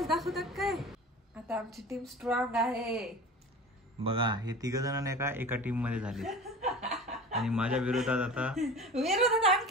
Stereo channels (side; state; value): both; normal; correlation 0.37